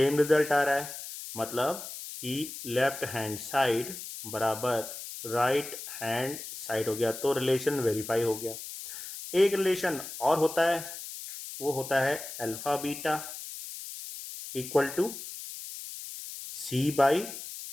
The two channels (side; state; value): left; noise; hiss, 10 dB below the sound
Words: रिजल्ट आ रहा है, मतलब कि लेफ्ट हैंड साइड बराबर राइट हैंड साइड हो गया, तो रिलेशन वेरीफाई हो गया। एक रिलेशन और होता है, वो होता है alpha beta equal to c/a